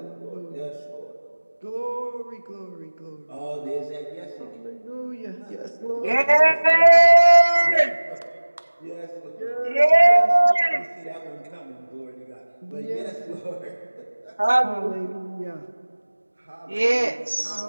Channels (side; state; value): both; inverted; correlation -1.00